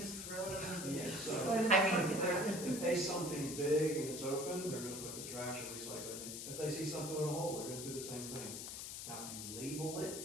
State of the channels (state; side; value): noise; left; hiss, 7 dB below the sound